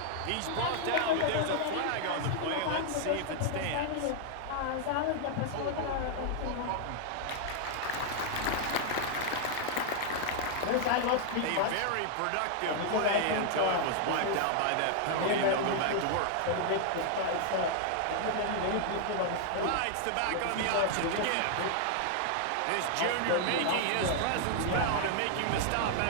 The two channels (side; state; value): both; different; correlation 0.00